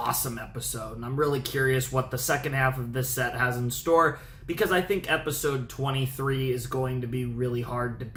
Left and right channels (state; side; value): identical; both; correlation 1.00